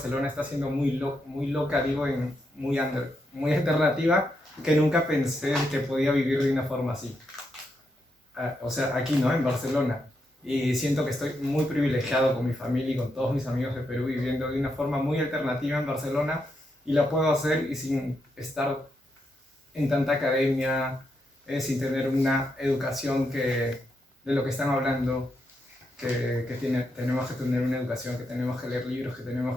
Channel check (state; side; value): normal; both; correlation 0.82